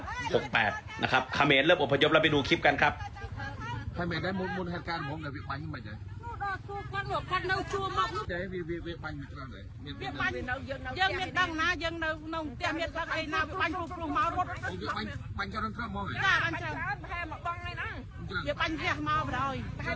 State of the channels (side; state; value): both; identical; correlation 1.00